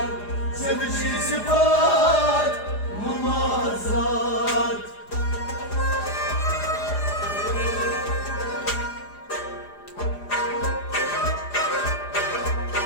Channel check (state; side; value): late; right; 4.9 ms